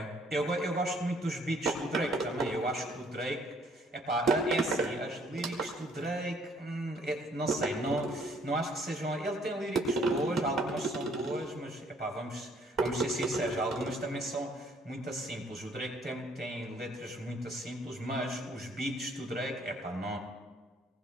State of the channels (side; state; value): both; normal; correlation 0.63